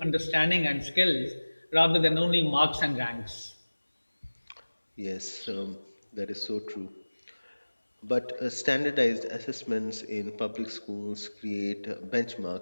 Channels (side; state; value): both; inverted; correlation -1.00